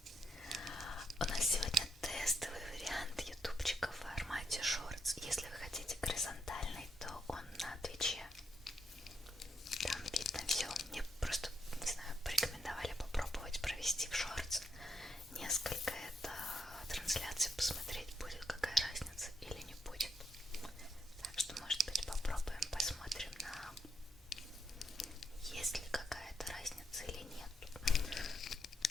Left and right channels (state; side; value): normal; both; correlation 0.78